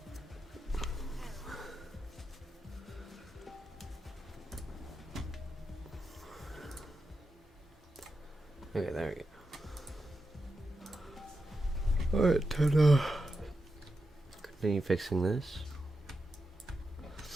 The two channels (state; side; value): normal; both; correlation 0.88